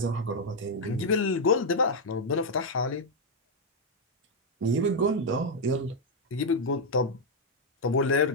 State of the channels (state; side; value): normal; both; correlation -0.01